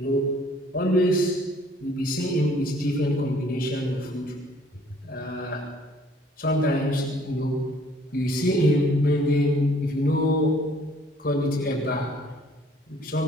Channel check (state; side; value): normal; both; correlation 0.59